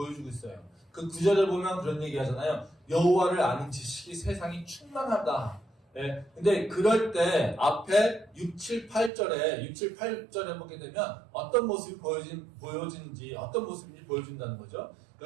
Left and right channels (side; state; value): left; drops out; at 9.1 s